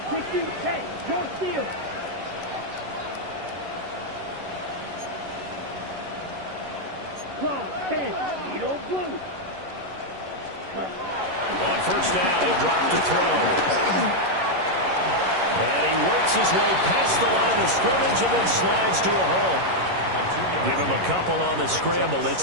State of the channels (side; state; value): left; late; 11 ms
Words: 60, hey, more steal. Claw, 10, Edo Blue. On 1st down, he'll drop to throw. And he works his way past the line of scrimmage and then slides to a hole. Give him a couple on the scramble. It's